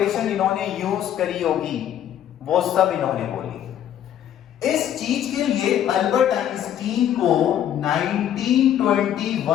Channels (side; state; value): right; quieter; 10.5 dB